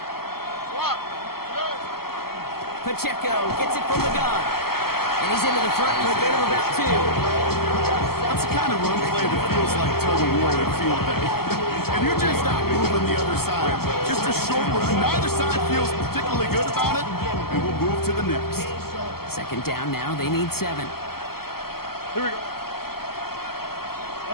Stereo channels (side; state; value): right; late; 0.95 ms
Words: Pacheco gets it from the gun. And he's into the front for a gain of about 2. That's the kind of run play that feels like tug of war in field day. And you're just not moving the other side. Just a short run. Neither side feels particularly good about it, and we'll move to the next. Second down now. They need 7. Here we go.